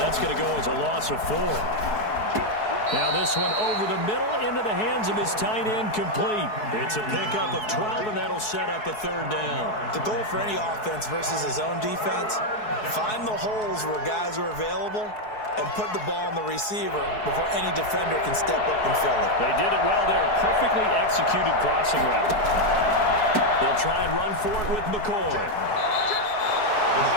going to go as a loss of 4. Now this one over the middle into the hands of his tight end, complete. It's a pickup of 12, and that'll set up a 3rd down. The goal for any offense versus his own defense, find the holes where guys are available and put the ball on the receiver before any defender can step up and fill it. They did it well there. Perfectly executed crossing route. They'll try and run for it with McCoy.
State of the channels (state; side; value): late; right; 4.7 ms